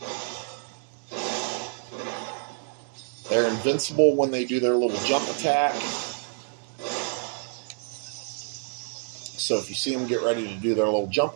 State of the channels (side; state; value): left; silent; 60 dB below the other